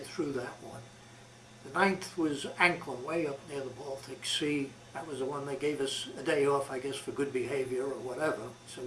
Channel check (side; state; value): both; identical; correlation 1.00